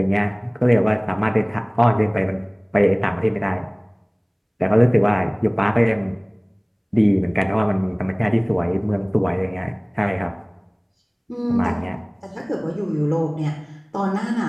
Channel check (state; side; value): identical; both; correlation 1.00